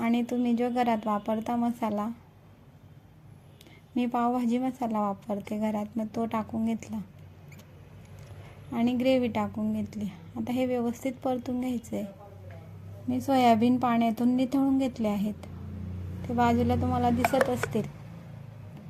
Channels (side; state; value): both; identical; correlation 1.00